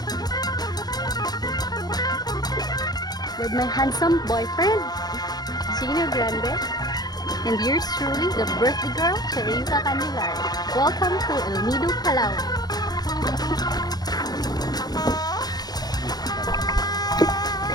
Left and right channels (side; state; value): right; late; 0.19 ms